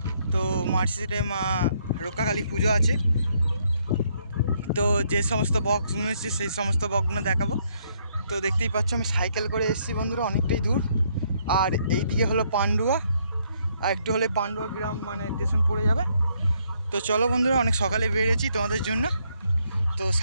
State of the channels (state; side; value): inverted; both; correlation -0.71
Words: তো মার্কশিটে মা রক্ষাকালী পুজো আছে। তো যে সমস্ত বক্সগুলো এসেছে সেই সমস্ত বক্সগুলো দেখাবো। তো দেখতেই পাচ্ছ আমি সাইকেল করে এসেছি বন্ধুরা, অনেকটাই দূর। আর এই দিকে হলো পান্ডুয়া, আর একটু হলে পান্ডুয়া গ্রাম মানে স্টেশন পড়ে যাবে। তো চলো বন্ধুরা, অনেক সকালে বেরিয়েছি তোমাদের জন্য। তো